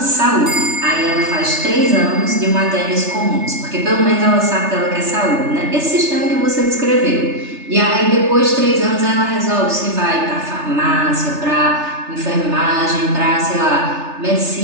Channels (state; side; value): late; left; 3.3 ms